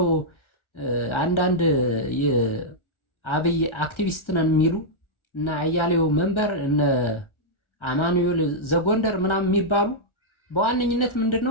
አንዳንድ የአብይ አክቲቪስት ነን የሚሉ እና አያሌው መንበር እነ አማኑኤል ዘጎንደር ምናምን የሚባሉ በዋነኝነት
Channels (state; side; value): late; right; 1.4 ms